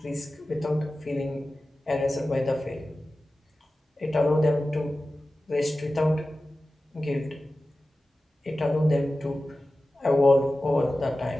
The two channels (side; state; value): both; normal; correlation 0.95